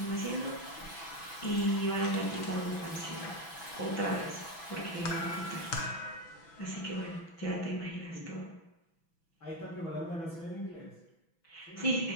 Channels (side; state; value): right; late; 6.1 ms